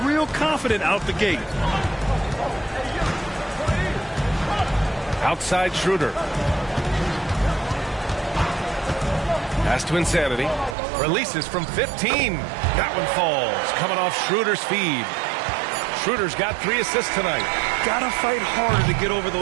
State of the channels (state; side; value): drops out; left; at 10.8 s